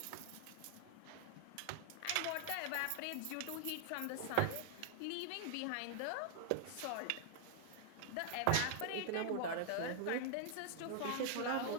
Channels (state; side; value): different; both; correlation 0.00